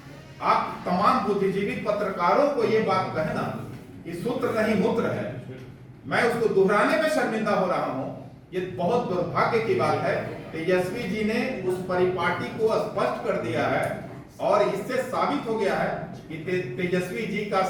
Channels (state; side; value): identical; both; correlation 1.00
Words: आप तमाम बुद्धिजीवी पत्रकारों को ये बात कहना कि सूत्र नहीं मूत्र है, मैं उसको दोहराने में शर्मिंदा हो रहा हूं। ये बहुत दुर्भाग्य की बात है। तेजस्वी जी ने उस परिपाटी को स्पष्ट कर दिया है और इससे साबित हो गया है कि तेजस्वी जी का